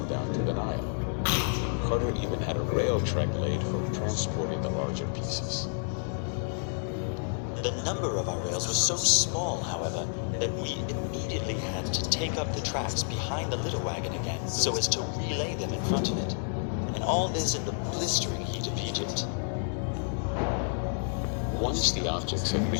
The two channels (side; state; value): right; silent; 58 dB below the other